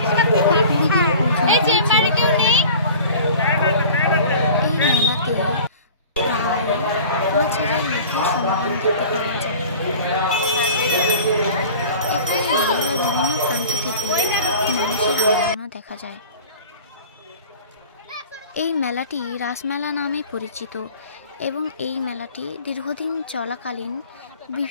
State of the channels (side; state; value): both; inverted; correlation -0.42